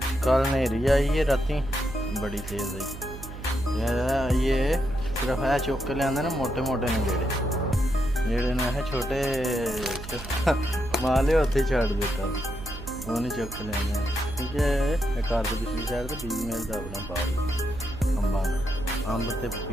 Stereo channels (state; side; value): noise; right; hum, 11 dB below the sound